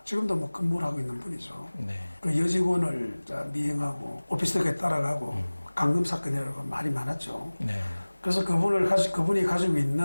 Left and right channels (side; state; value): both; inverted; correlation -1.00